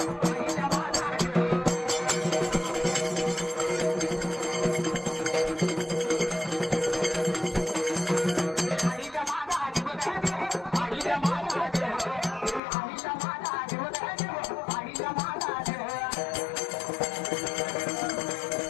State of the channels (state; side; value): drops out; right; at 12.6 s